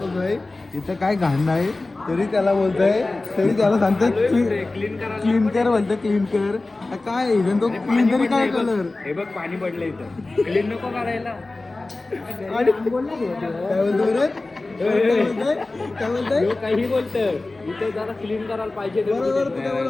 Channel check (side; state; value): right; quieter; 3.2 dB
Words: इथं काय घाण नाही तरी त्याला बोलतोय. तरी त्याला सांगतोय क्लीन कर बोलतोय. क्लीन कर काय इव्हन तो क्लीन तरी काय कलर. हे बघ पाणी पडलं इथं. क्लीन नको करायला. आणि काय बोलतो रे. काय बोलतोय काही बोलत इथे जरा क्लीन करायला पाहिजे. बरोबर